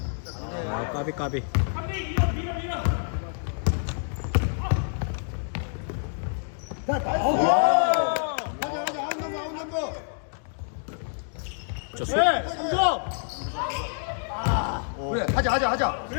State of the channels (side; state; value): right; silent; digital silence